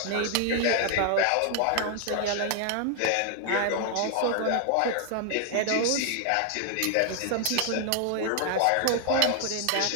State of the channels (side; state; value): both; different; correlation 0.00